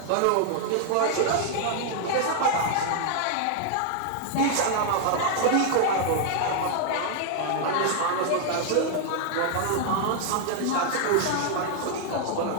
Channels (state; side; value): different; both; correlation 0.00